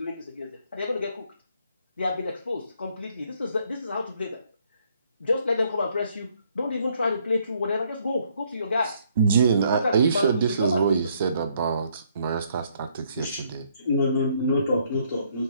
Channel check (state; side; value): inverted; both; correlation -0.68